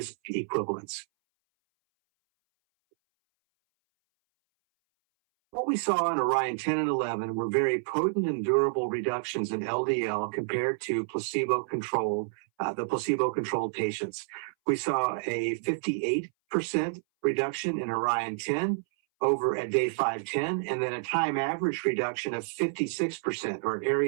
equivalents. What we saw in Orion 10 and 11 were very potent and durable reductions in LDL compared to the placebo-controlled patients. We saw a 58% reduction in Orion 10 over at day 510, and then a time average reduction of 56%, or an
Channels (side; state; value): left; silent; 59 dB below the other